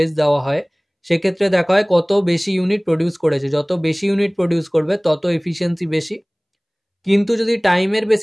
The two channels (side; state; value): both; identical; correlation 1.00